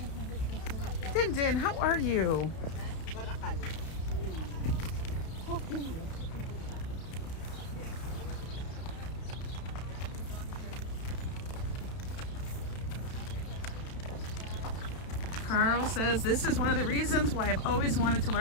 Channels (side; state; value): right; late; 32 ms